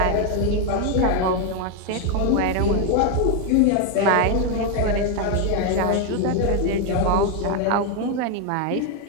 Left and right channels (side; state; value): both; different; correlation 0.01